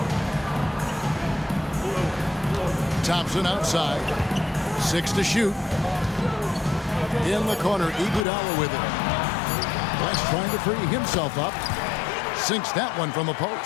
Thompson outside. 6 to shoot. In the corner, Iguodala with it. West trying to free himself up. Sinks that one from the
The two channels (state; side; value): drops out; right; at 8.2 s